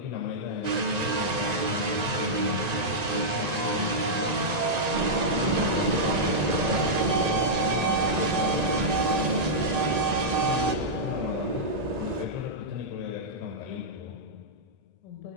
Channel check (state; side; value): late; left; 1.9 ms